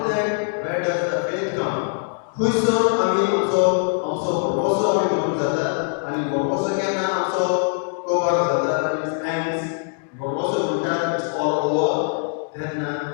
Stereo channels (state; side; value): silent; right; digital silence